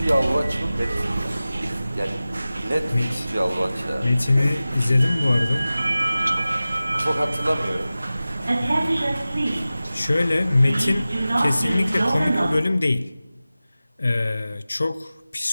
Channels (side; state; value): both; inverted; correlation -0.96